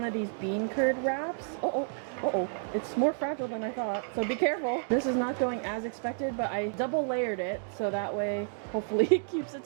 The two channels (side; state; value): left; silent; digital silence